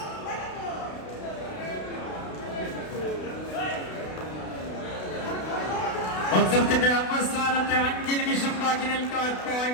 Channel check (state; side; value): late; right; 32 ms